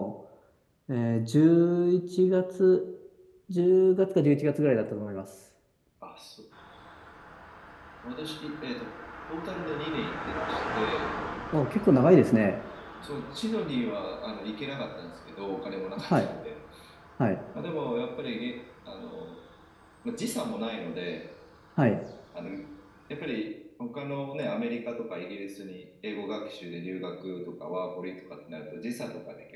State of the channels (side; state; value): both; identical; correlation 1.00